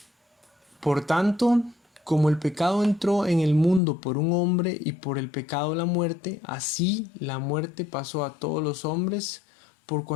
Por tanto, como el pecado entró en el mundo por un hombre y por el pecado la muerte, así la muerte pasó a todos los hombres por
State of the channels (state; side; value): drops out; right; at 3.8 s